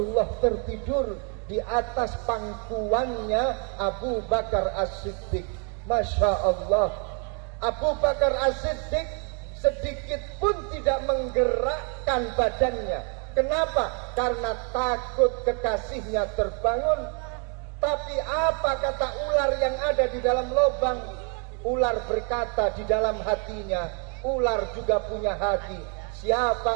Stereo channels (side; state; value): left; quieter; 38.0 dB